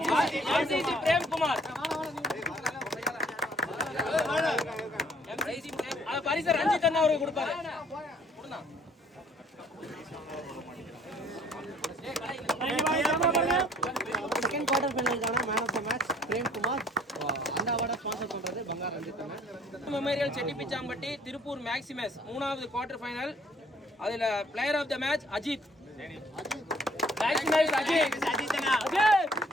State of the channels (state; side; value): normal; both; correlation 0.59